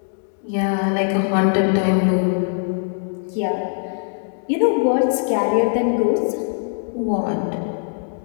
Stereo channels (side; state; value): right; silent; 65 dB below the other